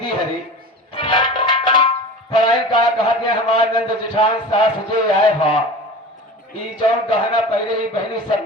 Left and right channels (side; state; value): both; normal; correlation 0.34